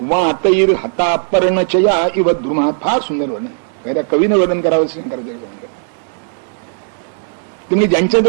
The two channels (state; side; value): silent; left; digital silence